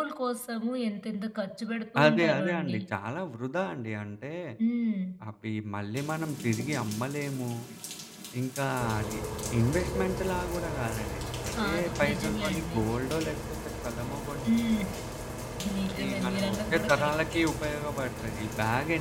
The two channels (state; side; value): identical; both; correlation 1.00